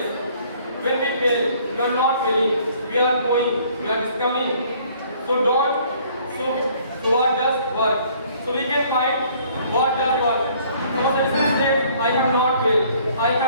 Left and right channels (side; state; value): both; inverted; correlation -0.59